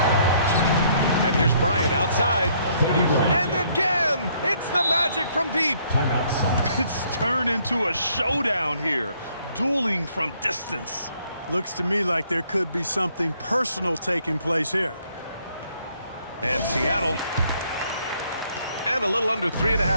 And here's Bryant outside. And again, it's the magic from deep. Timeout, Sonics. It's turned into a showdown here. Dueling from distance. Looks to me like there could be something personal taking place here. And Seattle. And a little under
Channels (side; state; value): both; inverted; correlation -0.66